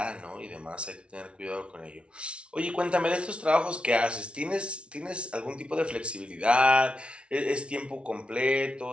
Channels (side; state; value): left; late; 0.059 ms